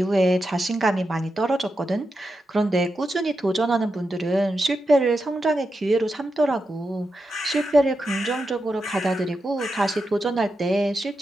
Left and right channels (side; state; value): both; normal; correlation 0.88